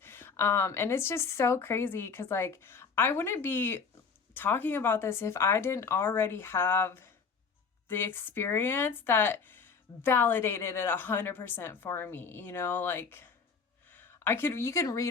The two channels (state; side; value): quieter; right; 5.5 dB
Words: And it's just so crazy because like I wouldn't be talking about this if I didn't already have the experience that validated it 100% for me. Like you can